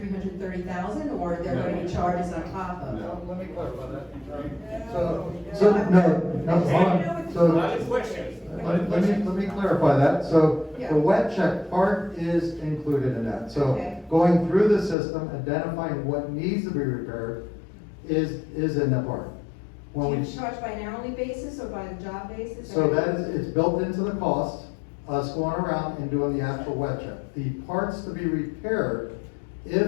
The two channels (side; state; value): right; drops out; at 15.0 s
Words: or are there going to be charges on top of? No. Let me clarify that. So, no, hold on. So, let me clarify that. So, Yeah. the wet check part is included in that. So, Okay. going through the system, identifying what needs to be repaired is in the part. Do When you we, charge by an hourly basis or by the job basis? so that is, it's built into the cost, us going around and doing the actual wet check. The parts to be repaired,